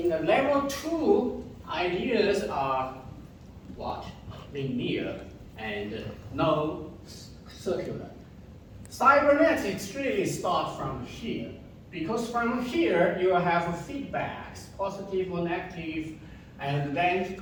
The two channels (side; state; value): both; identical; correlation 1.00